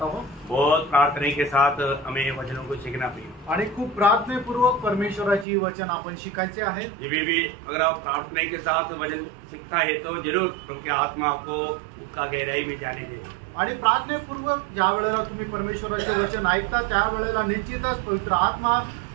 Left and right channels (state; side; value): drops out; left; at 5.5 s